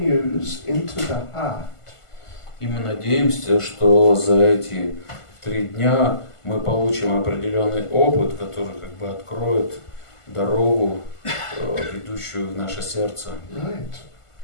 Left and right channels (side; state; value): right; late; 1.5 ms